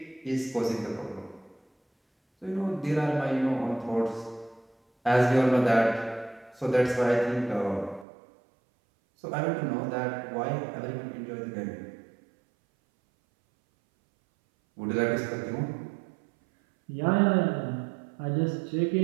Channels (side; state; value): left; drops out; at 8.1 s